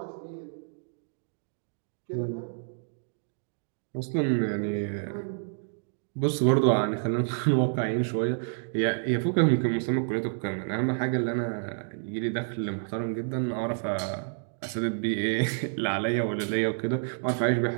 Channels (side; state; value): left; silent; digital silence